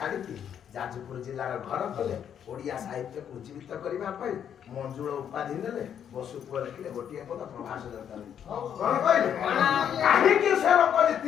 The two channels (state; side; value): quieter; right; 8.9 dB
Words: ଯାଜପୁର ଜିଲ୍ଲାର ଘର କଲେ ଓଡ଼ିଆ ସାହିତ୍ୟକୁ ଉଜ୍ଜୀବିତ କରିବା ପାଇଁ ମଞ୍ଜୁଳ ଉପାଧି ନେଲେ ବସୁ ପୁଅ ଲେଖିଲେ ଗୋଟିଏ ପଦ ପ୍ରଭାସ ଦରକାର କଣ କହିଲେ କାହିଁକି ସେ ଲୋକ